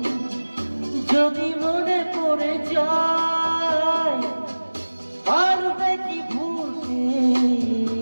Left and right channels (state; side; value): inverted; both; correlation -1.00